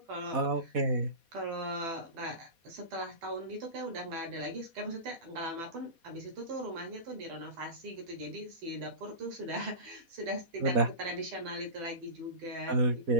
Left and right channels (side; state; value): left; late; 4.1 ms